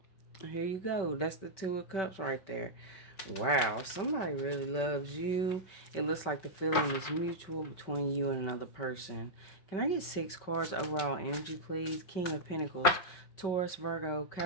here you go. That's the 2 of Cups right there. Wow, somebody really loves you. It looks like the feeling is mutual between you and another person. Can I get 6 cards overall energy, please? King of Pentacles, Taurus, Virgo,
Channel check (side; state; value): right; late; 5.2 ms